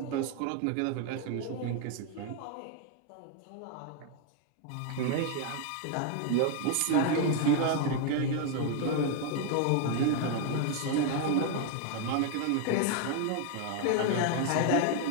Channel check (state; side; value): different; both; correlation 0.01